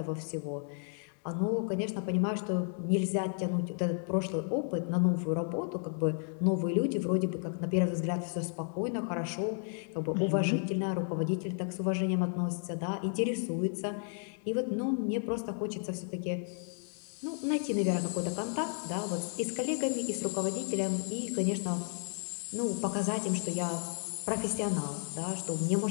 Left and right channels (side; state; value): right; silent; 56 dB below the other